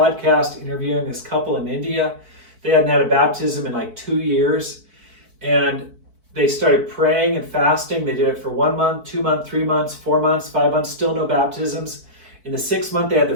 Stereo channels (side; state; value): left; late; 4.5 ms